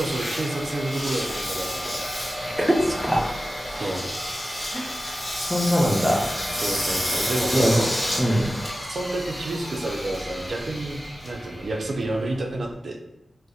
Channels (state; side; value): normal; both; correlation 0.94